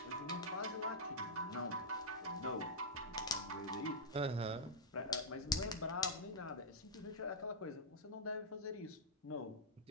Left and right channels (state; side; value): normal; both; correlation -0.07